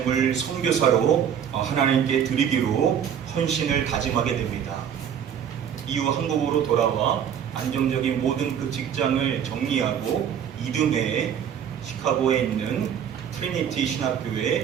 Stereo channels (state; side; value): quieter; left; 8.6 dB